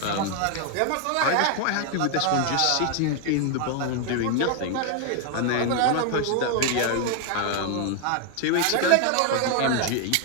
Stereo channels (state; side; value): different; both; correlation 0.00